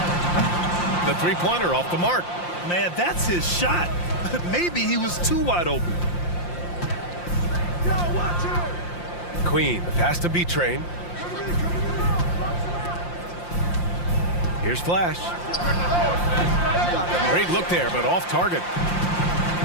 The three-pointer off the mark. Man, that's his shot. Maybe he was too wide open. Queen, the pass to B-Train. Here's Flash. Great look there, but off target.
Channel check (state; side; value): late; right; 5.7 ms